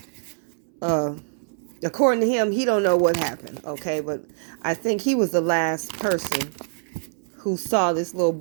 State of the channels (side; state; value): left; silent; 62 dB below the other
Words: uh, according to him, he don't know what happened. Okay, but I think he was the last person who saw this little